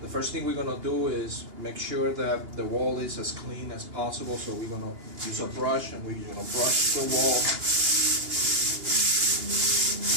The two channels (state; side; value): late; left; 2.8 ms